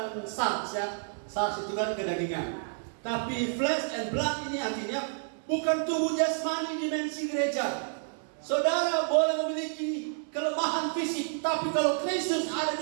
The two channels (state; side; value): silent; left; digital silence